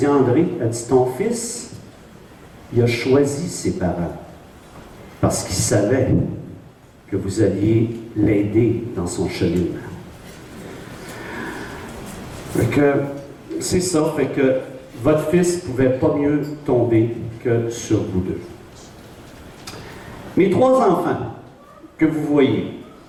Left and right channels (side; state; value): both; identical; correlation 1.00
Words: André, elle dit, ton fils, il a choisi ses parents parce qu'il savait que vous alliez l'aider dans son cheminement. Fait que, c'est ça, fait que votre fils ne pouvait pas mieux tomber que sur vous deux. Mes 3 enfants que vous voyez,